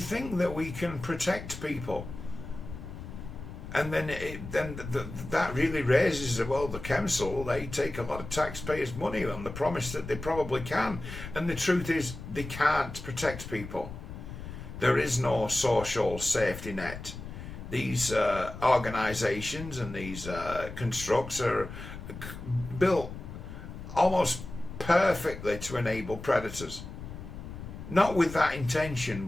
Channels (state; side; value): noise; left; rumble, 10 dB below the sound